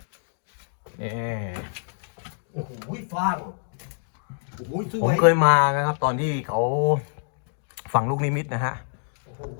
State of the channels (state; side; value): silent; right; digital silence